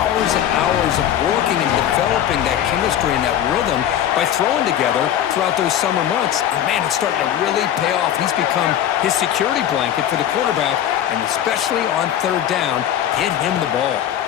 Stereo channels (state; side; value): quieter; right; 10.7 dB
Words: and hours of working and developing that chemistry and that rhythm by throwing together throughout those summer months. And man, it's starting to really pay off. He's become his security blanket for the quarterback, and especially on 3rd down, get him the ball.